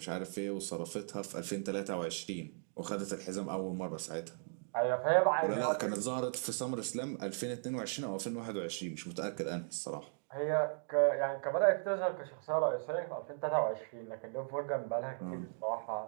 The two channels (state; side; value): silent; left; digital silence